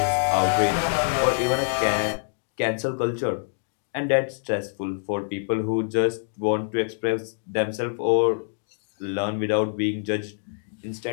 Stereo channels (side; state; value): right; silent; digital silence